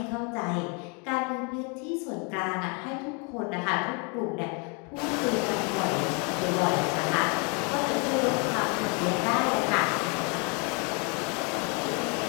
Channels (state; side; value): quieter; right; 34.4 dB